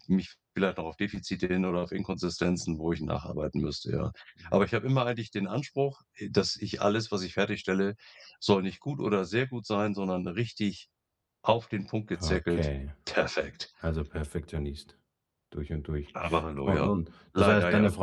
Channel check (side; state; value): both; identical; correlation 1.00